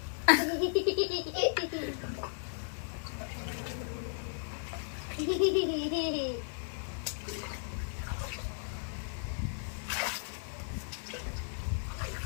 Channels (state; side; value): silent; right; 54 dB below the other